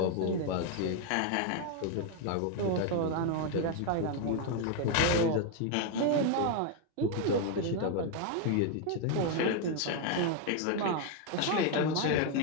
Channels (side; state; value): both; different; correlation 0.01